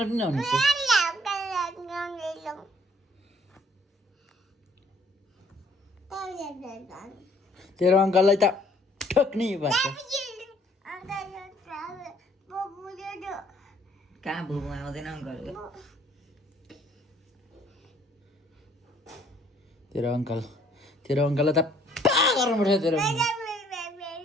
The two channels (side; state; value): both; normal; correlation 0.62